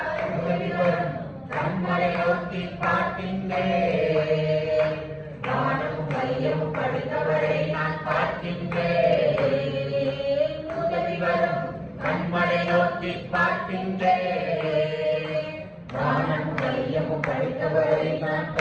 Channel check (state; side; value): identical; both; correlation 1.00